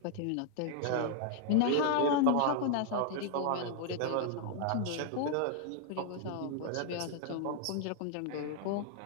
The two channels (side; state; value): both; different; correlation 0.00